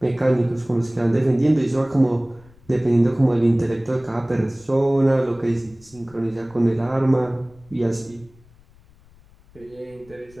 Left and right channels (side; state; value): left; noise; rumble, 27 dB below the sound